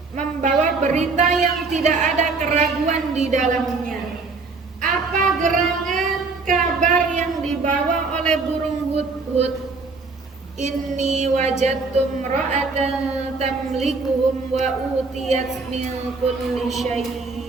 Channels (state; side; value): quieter; left; 4.1 dB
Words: membawa berita yang tidak ada keraguan di dalamnya. Apa gerangan kabar yang dibawa oleh burung hudhud? Inni wajadtum ra'atan tamlikuhum wa utiyat min kulli